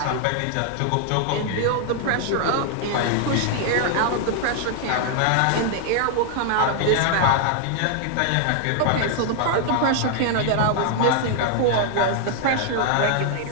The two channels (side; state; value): both; different; correlation 0.00